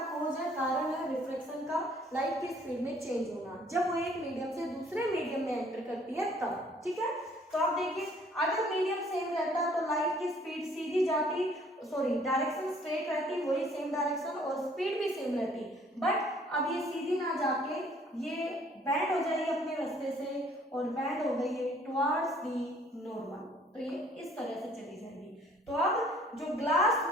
कॉज है, कारण है रिफ्रैक्शन का, लाइट की स्पीड में चेंज होना जब वो एक मीडियम से दूसरे मीडियम में एंटर करती है तब, ठीक है। तो आप देखिए, अगर मीडियम सेम रहता तो लाइट की स्पीड सीधी जाती, सॉरी डायरेक्शन स्ट्रेट रहती, वही सेम डायरेक्शन, और स्पीड भी सेम रहती, बट अब ये सीधी ना जाके ये बैंड हो जाएगी अपने रास्ते से, और बैंड हो गई है टुवर्ड्स दी नॉर्मल, तो ये इस तरह से चली जाएगी। तो अब जो ग्लास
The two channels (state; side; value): normal; both; correlation 0.59